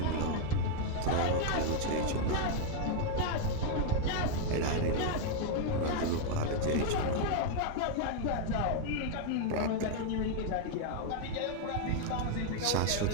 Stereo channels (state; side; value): different; both; correlation 0.00